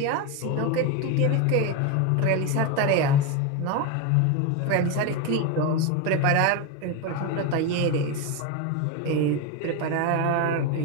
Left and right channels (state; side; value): different; both; correlation 0.03